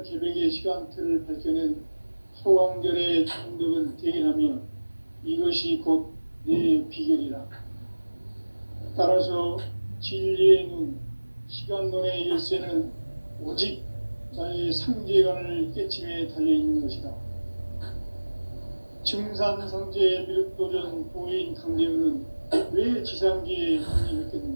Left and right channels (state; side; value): inverted; both; correlation -1.00